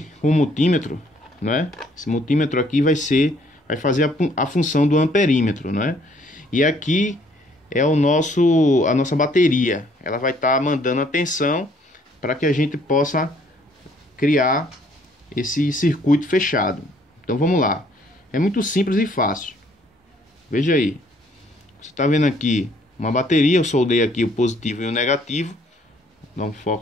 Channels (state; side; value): normal; both; correlation 0.63